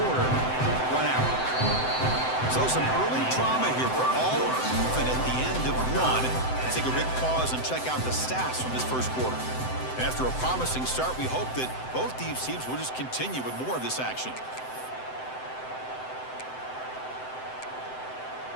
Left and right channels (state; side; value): late; right; 7.8 ms